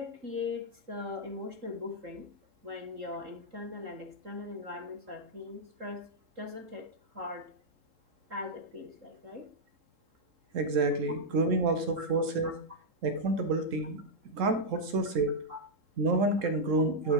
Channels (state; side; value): late; left; 3.7 ms